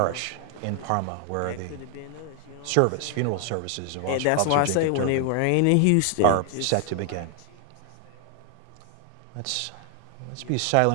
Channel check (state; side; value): different; both; correlation 0.00